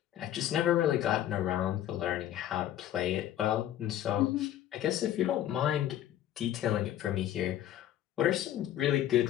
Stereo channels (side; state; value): right; quieter; 12.1 dB